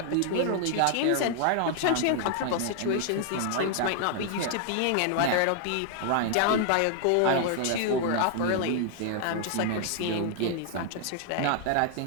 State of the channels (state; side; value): different; both; correlation 0.00